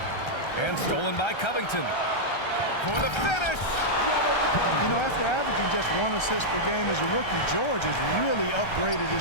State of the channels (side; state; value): right; late; 1.3 ms